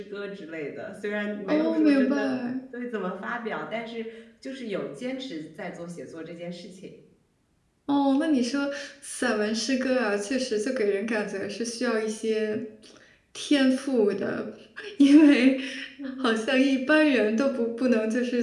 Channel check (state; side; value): identical; both; correlation 1.00